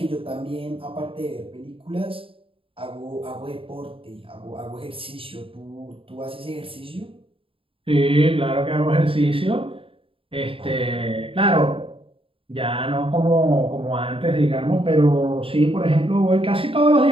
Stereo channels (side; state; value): left; late; 0.26 ms